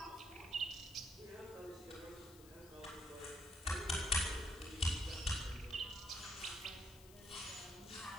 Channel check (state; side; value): noise; left; hiss, 19 dB below the sound